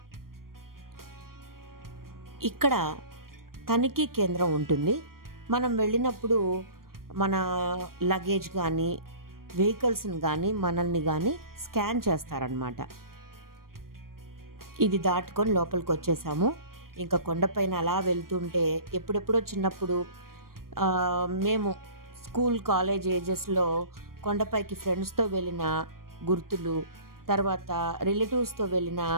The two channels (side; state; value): left; late; 0.92 ms